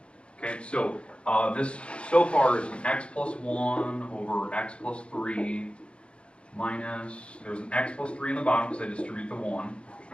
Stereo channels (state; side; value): late; right; 0.058 ms